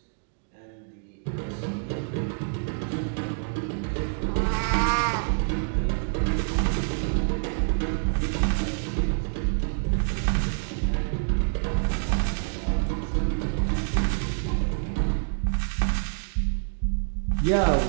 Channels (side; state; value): left; silent; digital silence